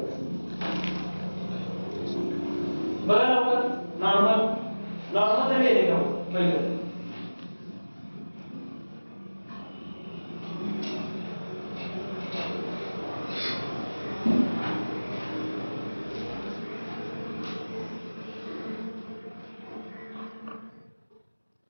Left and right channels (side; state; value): both; inverted; correlation -1.00